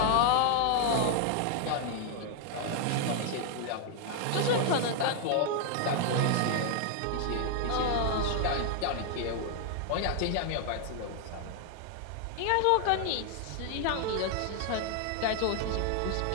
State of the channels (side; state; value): both; different; correlation 0.00